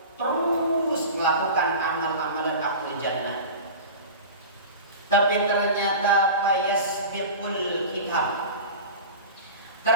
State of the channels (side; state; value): both; inverted; correlation -0.33